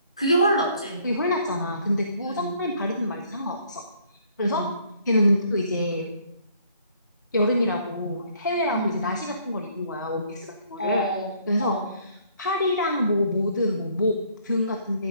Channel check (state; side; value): inverted; both; correlation -0.63